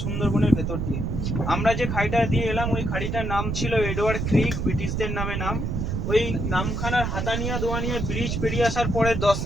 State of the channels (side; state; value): right; noise; rumble, 2 dB below the sound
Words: সুন্দরবনের ভেতর দিয়ে। আমরা যে খাড়িটা দিয়ে এলাম ওই খাড়িটার নাম ছিল এডওয়ার্ড ক্রিক, ব্রিটিশদের নামে নাম। ওই নামখানার হাতানিয়া দোয়ানিয়া ব্রিজ পেরিয়ে আসার পরে 10